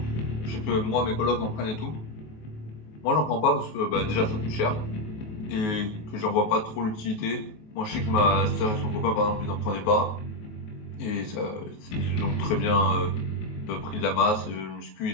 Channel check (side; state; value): right; late; 19 ms